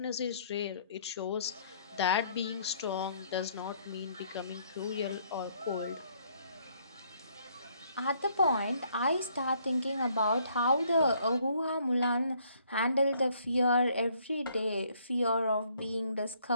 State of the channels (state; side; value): inverted; both; correlation -0.66